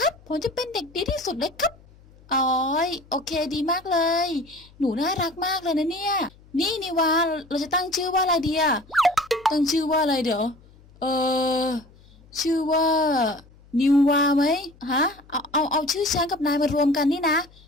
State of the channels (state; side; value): noise; left; hum, 26 dB below the sound